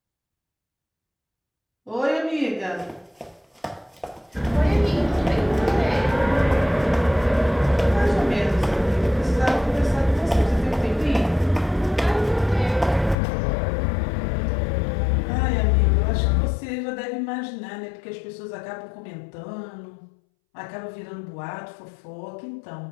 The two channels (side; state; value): right; drops out; at 13.2 s